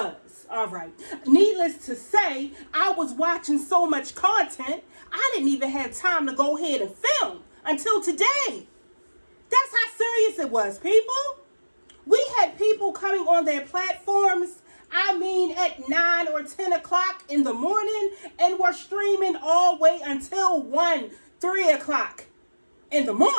all right? Needless to say, I was watching so much content, I didn't even have time to go ahead and film until today. That's how serious it was, people. We had people coming on their platforms, I mean, at 9 or 10 o'clock in the morning, and were streaming all the way until 1, 3 o'clock in the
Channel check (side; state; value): both; inverted; correlation -1.00